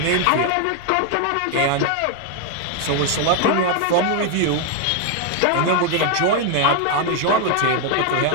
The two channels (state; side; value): different; both; correlation 0.01